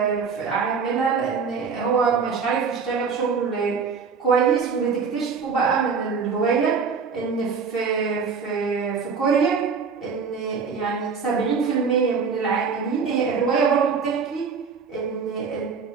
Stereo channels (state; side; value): quieter; left; 5.6 dB